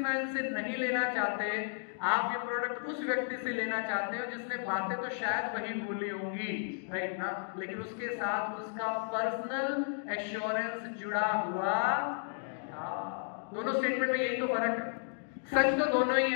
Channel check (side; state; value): right; silent; digital silence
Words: से नहीं लेना चाहते, आप ये प्रोडक्ट उस व्यक्ति से लेना चाहते हो जिसने बातें तो शायद वही बोली होंगी, राइट ना, लेकिन उसके साथ उसका पर्सनल एश्योरेंस जुड़ा हुआ था। दोनों स्टेटमेंट में यही तो फर्क है। सच तो दोनों ही